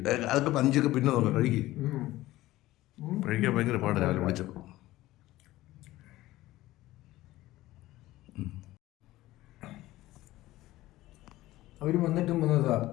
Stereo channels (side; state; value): right; quieter; 16.7 dB